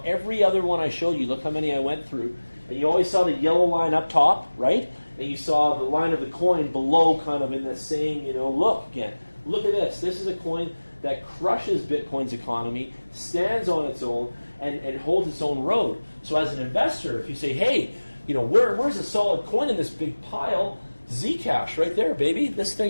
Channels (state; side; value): inverted; both; correlation -1.00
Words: every other one I showed you. Look how many I went through. And you always saw the yellow line up top, right? And you saw the line of the coin below, kind of in the same, look again. Look at this. This is a coin that crushes Bitcoin's economy, stands on its own, and holds its own road. So as an investor, if you say, hey, where's a solid coin in this big pile? Zcash, right there, baby. This